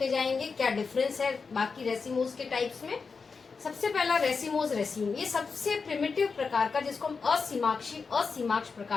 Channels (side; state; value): right; quieter; 4.9 dB